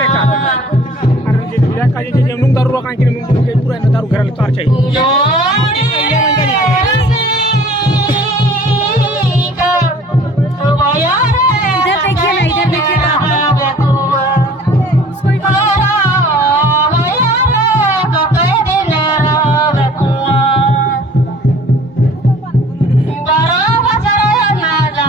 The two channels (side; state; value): both; normal; correlation 0.50